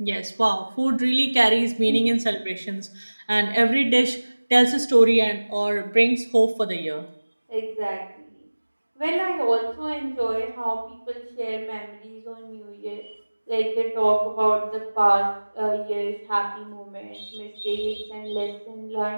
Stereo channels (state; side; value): inverted; both; correlation -1.00